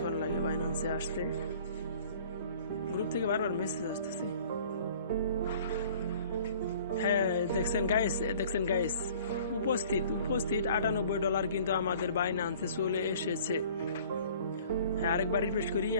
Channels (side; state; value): both; inverted; correlation -0.51